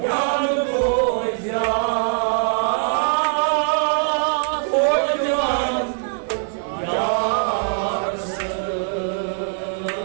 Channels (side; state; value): left; silent; 64 dB below the other